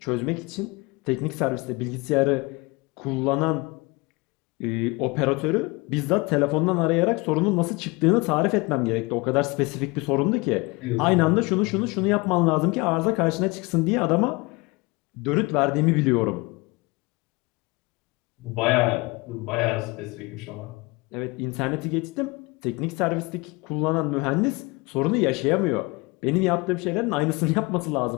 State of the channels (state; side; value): quieter; right; 25.4 dB